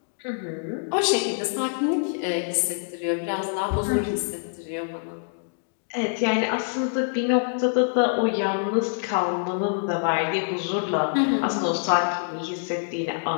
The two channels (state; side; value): silent; right; digital silence